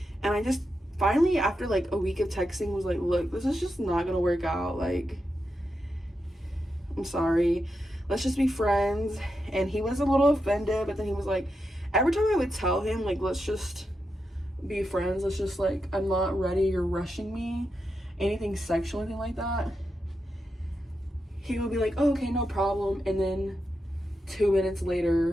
And I just finally, after like a week of texting, was like, look, this is just not gonna work out. Like, I'm sorry, let's just be friends. And he was a little offended, but then he was like, every time I would tell him, like, let's just be friends, let's just, like, I'm not ready, you're rushing me, anything sexual, anything like that, he would be like, oh, okay, no problem. And then 2 minutes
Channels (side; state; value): both; normal; correlation 0.87